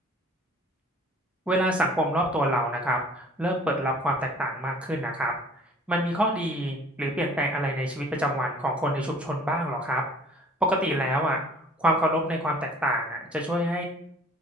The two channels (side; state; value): both; normal; correlation 0.51